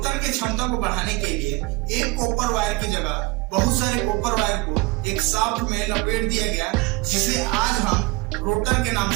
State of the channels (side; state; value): left; quieter; 23.0 dB